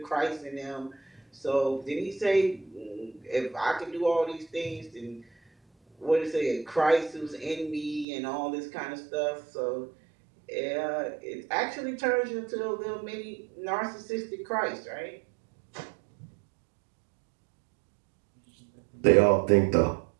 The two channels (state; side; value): drops out; left; at 8.1 s